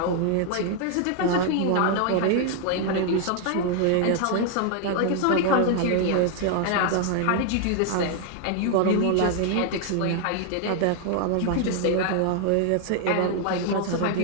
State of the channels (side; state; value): both; different; correlation 0.00